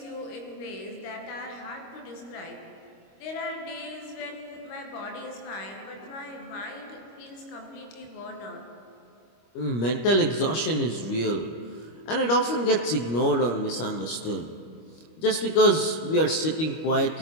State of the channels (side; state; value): right; late; 25 ms